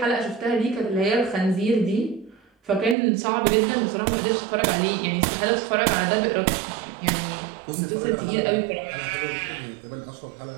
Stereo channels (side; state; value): left; drops out; at 3.0 s